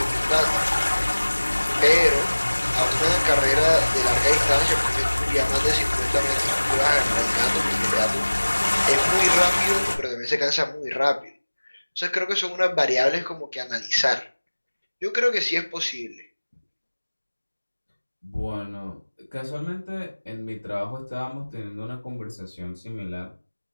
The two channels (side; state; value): both; inverted; correlation -1.00